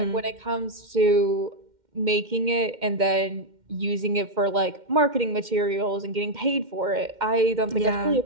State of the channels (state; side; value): late; left; 2.1 ms